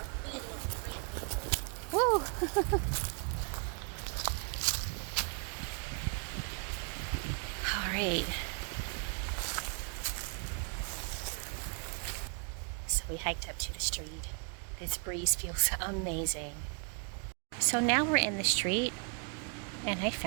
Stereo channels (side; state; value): left; quieter; 39.4 dB